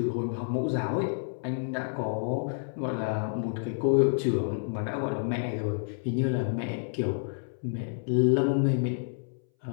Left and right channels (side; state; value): right; silent; 58 dB below the other